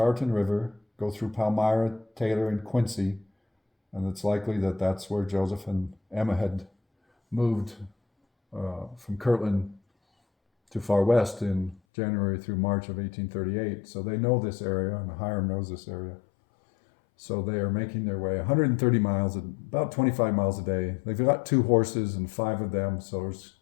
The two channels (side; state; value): right; drops out; at 11.8 s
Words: River, go through Palmyra, Taylor, and Quincy, and it's likely that that's where Joseph and Emma had moved from Kirtland to Far West in January through March of 1838. So they know this area, and Hiram knows this area. So they are making their way 130 miles, about 25 miles a day. They've got 2 horses and 5 of them, so